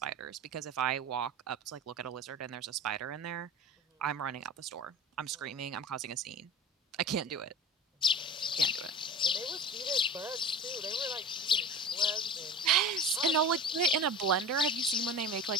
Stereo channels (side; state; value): both; normal; correlation 0.33